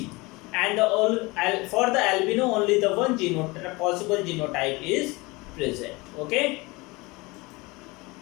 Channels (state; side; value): quieter; right; 24.1 dB